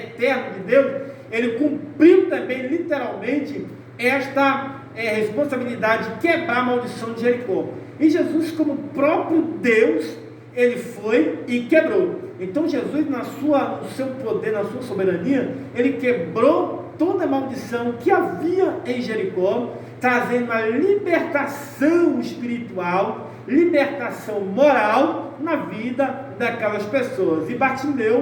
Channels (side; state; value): both; identical; correlation 1.00